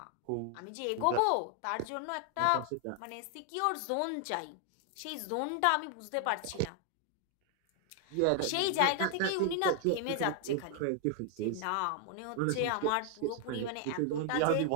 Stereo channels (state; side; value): different; both; correlation 0.00